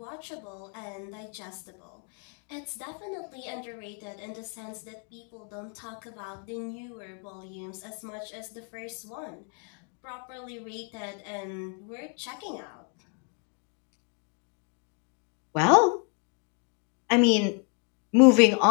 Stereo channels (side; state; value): right; quieter; 38.2 dB